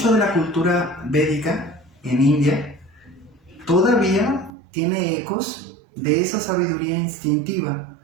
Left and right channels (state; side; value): drops out; left; at 4.5 s